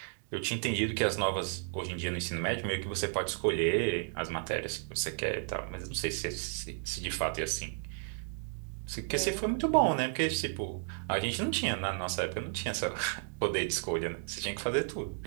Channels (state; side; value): silent; left; 56 dB below the other